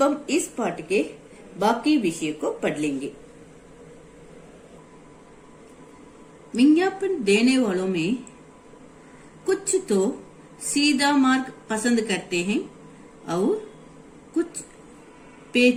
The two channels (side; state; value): both; identical; correlation 1.00